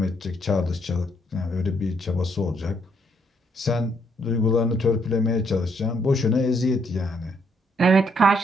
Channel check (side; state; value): both; normal; correlation 0.71